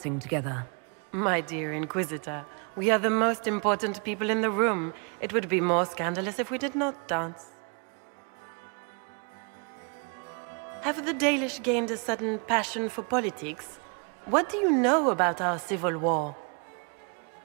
together? My dear Inquisitor, we are the most important people in the room. It would be more scandalous if we did not dance. Have the Dalish gained a sudden passion for politics? What do you know about our civil war?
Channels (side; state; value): left; quieter; 36.1 dB